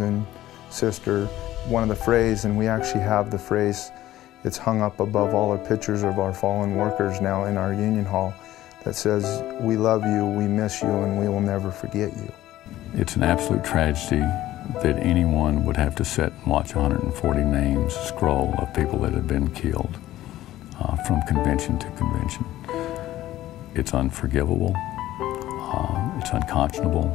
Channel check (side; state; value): right; quieter; 14.6 dB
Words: sister. One of the phrase, and we actually have the phrase, it's hung up above all our pictures of our fallen workers now in our union hall, that says, "We love you, we miss you, and we will never forget you." It's an absolute tragedy that anyone would have to sit and watch 140 names scroll of people that have been killed from convention to convention. It's unforgivable, it's unconscionable,